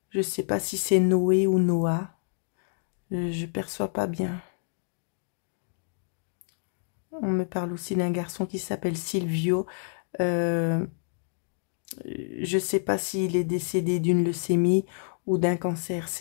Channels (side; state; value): right; silent; digital silence